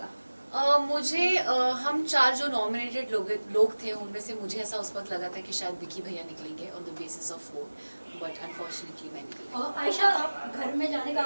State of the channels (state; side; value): inverted; both; correlation -1.00